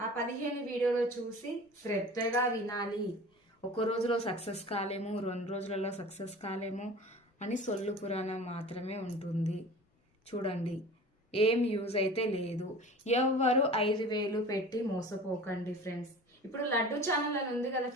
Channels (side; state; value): both; normal; correlation 0.39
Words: ఆ 15 వీడియోలు చూసి శ్రద్ధగా వినాలి. ఒక రోజులో సక్సెస్ కాలేము, 2 రోజులలో సక్సెస్ కాలేము అని సొల్లు పురాణం మాత్రమే ఉంటుంది. చూడండి, ఏం యూజ్ అయితే లేదు. ఎవ్వరు 5,000 పెట్టి మోసపోకండి ఫ్రెండ్స్. ఇప్పుడు లడ్డు ఛానల్ అని ఉంది కదా